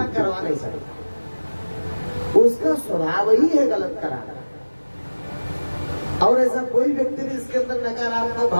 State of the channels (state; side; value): inverted; both; correlation -1.00